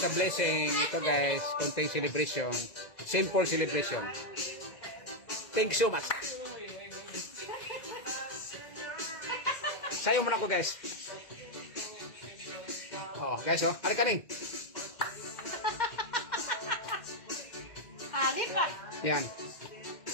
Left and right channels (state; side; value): late; right; 2.0 ms